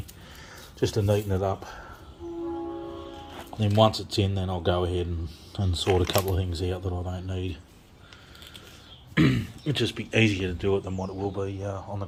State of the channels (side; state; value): both; identical; correlation 1.00